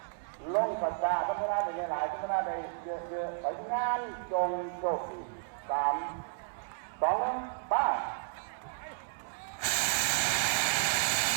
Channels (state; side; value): silent; left; 56 dB below the other